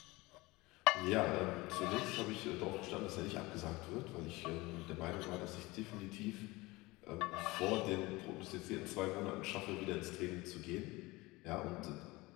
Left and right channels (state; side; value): quieter; right; 21.8 dB